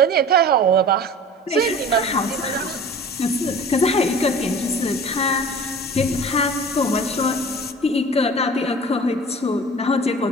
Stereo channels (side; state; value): both; normal; correlation 0.41